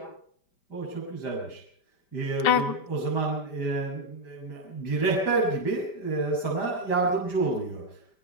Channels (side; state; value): right; late; 5.1 ms